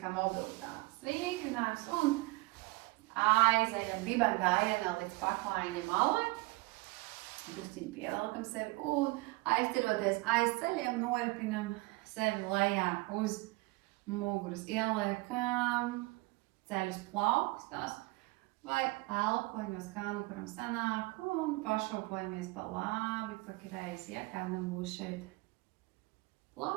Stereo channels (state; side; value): quieter; left; 23.9 dB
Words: kā mobilitātes vingrinājums un aizējam diben gājienā līdz paklājiņa malai. Drusciņi pievelkam sevi un aizceroties aiz ceļiem noripinam sevi lejā uz muguras. Ieliekam ceļus plaukstās vai elpoņos, kā nu kuram sanāk, un pašopojamies pa labi, pa kreisi. Ja kādam būs šeit